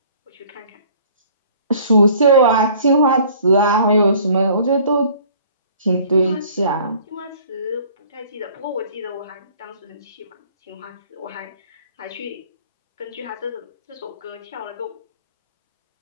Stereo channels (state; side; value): inverted; both; correlation -0.53